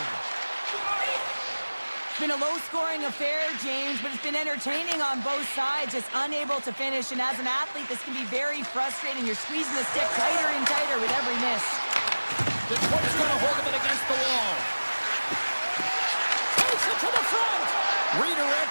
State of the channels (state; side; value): inverted; both; correlation -1.00